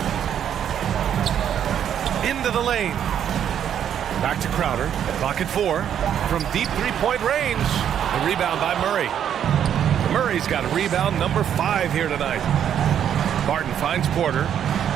Into the lane. Back to Crowder. Clock at 4. From deep 3-point range. The rebound by Murray. Murray's got rebound number 5 here tonight. Barton finds Porter.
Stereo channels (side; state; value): left; quieter; 9.4 dB